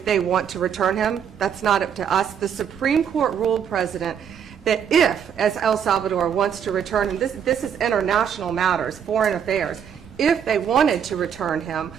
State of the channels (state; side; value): quieter; left; 8.1 dB